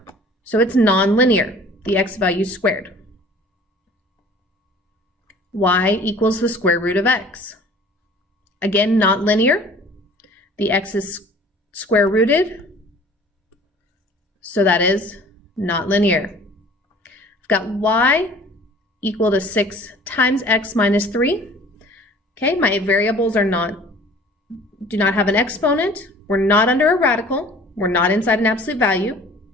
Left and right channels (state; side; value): normal; both; correlation 0.49